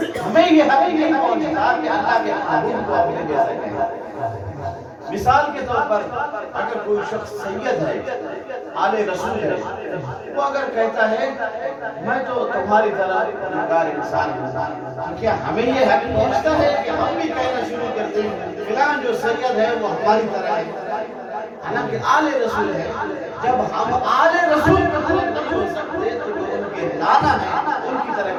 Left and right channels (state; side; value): identical; both; correlation 1.00